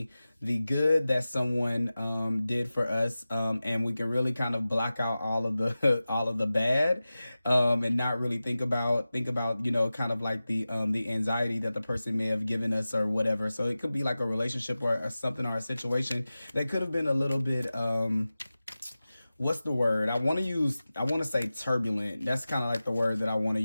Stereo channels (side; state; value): both; inverted; correlation -0.96